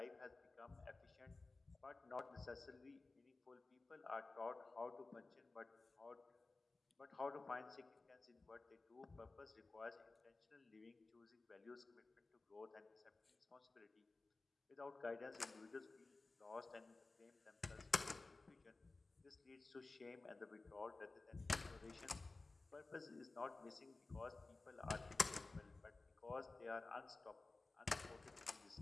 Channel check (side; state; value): right; quieter; 3.4 dB